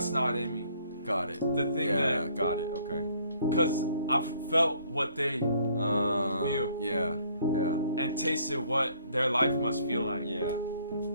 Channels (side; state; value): both; inverted; correlation -0.62